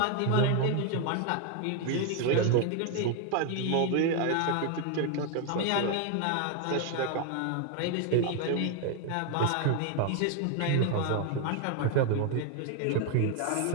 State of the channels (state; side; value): different; both; correlation 0.01